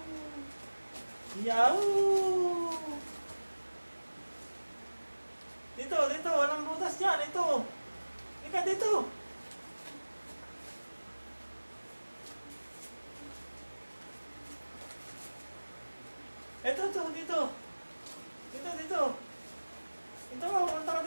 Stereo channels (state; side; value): inverted; both; correlation -1.00